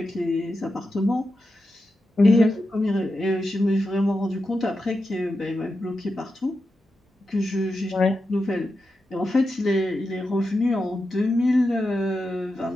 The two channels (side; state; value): both; normal; correlation 0.89